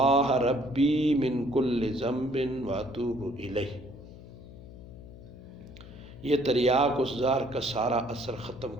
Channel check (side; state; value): left; noise; hum, 16 dB below the sound